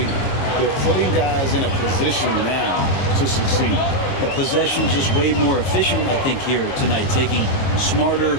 they're putting guys in a position now to succeed. The possession just way more efficient, I think, here tonight. Taking smarter,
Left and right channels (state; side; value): late; right; 22 ms